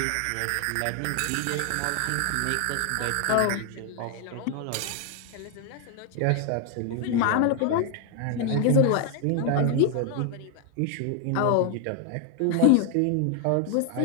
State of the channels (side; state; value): both; different; correlation 0.00